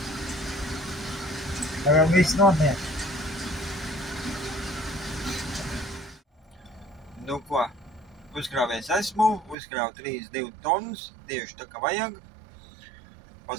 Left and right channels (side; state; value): left; drops out; at 9.6 s